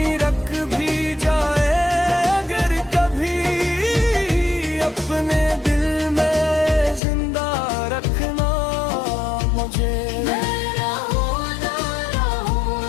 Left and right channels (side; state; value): right; drops out; at 7.0 s